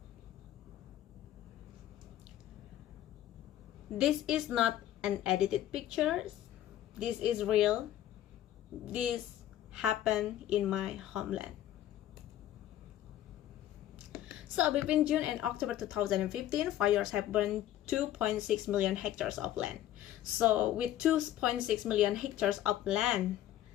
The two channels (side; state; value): right; quieter; 12.7 dB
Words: This is not an edited picture. This is real. This happened in my homeland. So between June and October 2015, fires have burned 2.6 million hectares of land. So with 2.6 million hectares of land,